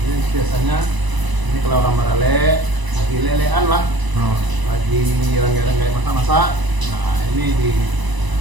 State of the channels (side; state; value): left; late; 1.0 ms